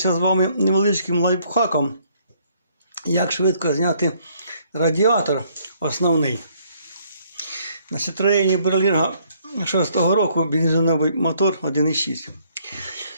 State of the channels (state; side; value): inverted; both; correlation -0.66